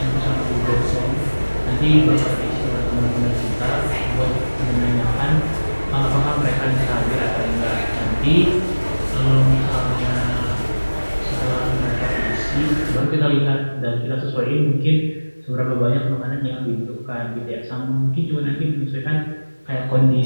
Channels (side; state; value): both; inverted; correlation -1.00